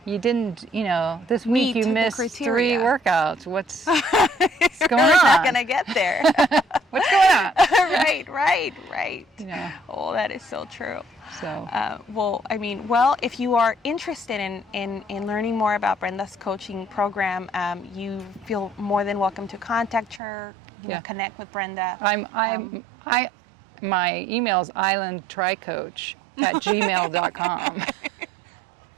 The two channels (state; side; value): drops out; left; at 20.2 s